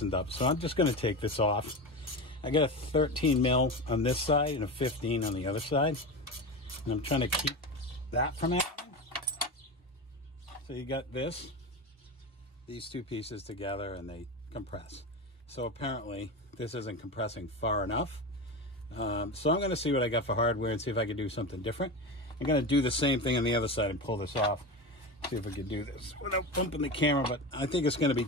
up, so I'm just going to take this off. I got a 13 mil on this side and a 15 on the other side, and I'm trying to keep that from happening. So you got these two pieces together, and they compress. So apparently this isn't compressing far enough. So I'm going to see what I got for hardware and see if I can do something different. I'm going to do the same thing on the other side and pull this off. See if I can do this without bumping the camera, but I think it's going to be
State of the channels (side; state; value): both; normal; correlation 0.23